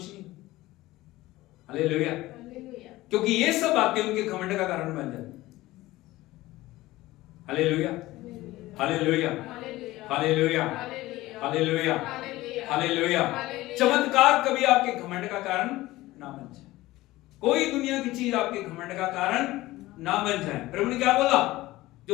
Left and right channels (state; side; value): quieter; right; 17.8 dB